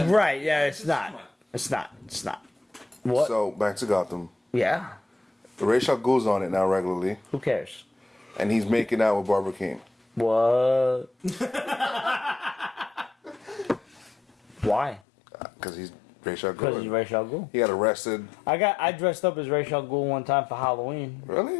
Right? Yeah, it's not. Come on. It's not. It's not. What? So back to Gotham. Yeah. Rachel goes on it now regularly, Who cares? and he's making out with Barbara King. What? Why? Because he's Rachel Because he's Gould. Ra's al Ghul. He got arrested. I dressed up as Ra's al Ghul one time for Halloween.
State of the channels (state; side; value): drops out; right; at 15.0 s